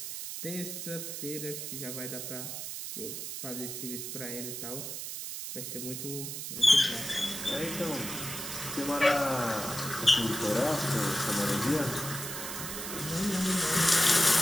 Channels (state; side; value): noise; right; hiss, 6 dB below the sound